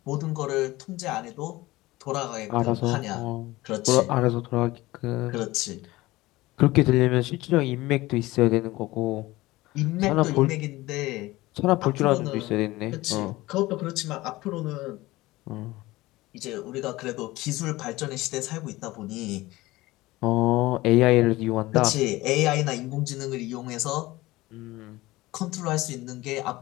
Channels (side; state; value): right; quieter; 19.1 dB